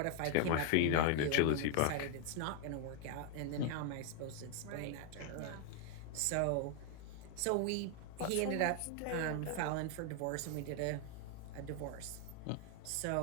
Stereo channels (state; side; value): different; both; correlation 0.00